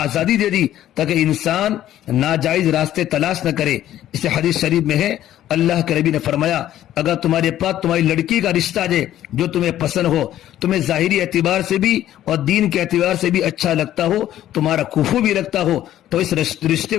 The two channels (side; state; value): right; quieter; 12.6 dB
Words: دے دی تاکہ انسان ناجائز راستے تلاش نہ کرے. اسے حدیث شریف میں ہے اللہ کے نبی نے فرمایا اگر تمہارے پاس تمہاری لڑکی کا رشتہ ہے جو تمہیں پسند ہو, تمہیں ظاہری اعتبار سے بھی اور دین کے اعتبار سے بھی اچھا لگتا ہو, تمہارا کفو بھی لگتا ہو, تو اس رشتے